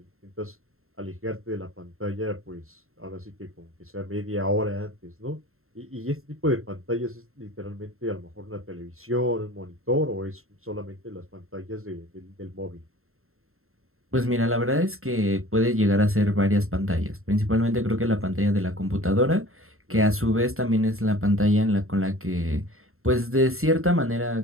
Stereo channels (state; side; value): late; left; 0.62 ms